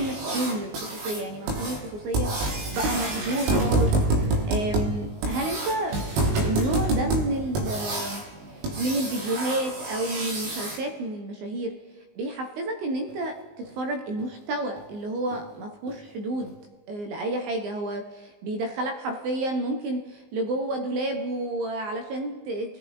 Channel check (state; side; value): late; left; 19 ms